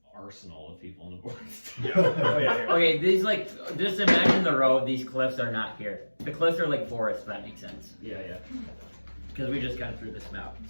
arsenal of people in the forest. Oh yeah. Okay, these just imagine the road. These cliffs are not here. The cliffs are like forests. If that makes sense. Yeah. Because we just got through this map.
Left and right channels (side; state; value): both; inverted; correlation -1.00